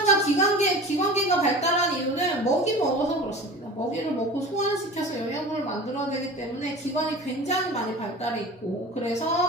기관계가 발달한 이유는 먹이 먹어서 그렇습니다. 먹이를 먹고 소화시켜서 영양분을 만들어야 되기 때문에 기관이 굉장히 많이 발달해 있고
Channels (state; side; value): normal; both; correlation 0.36